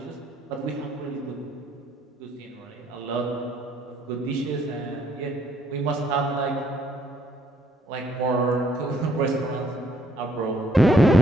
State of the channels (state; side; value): normal; both; correlation 0.67